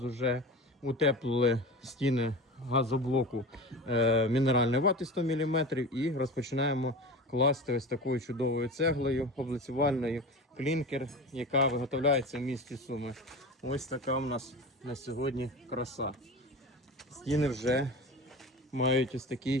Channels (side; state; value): both; normal; correlation 0.31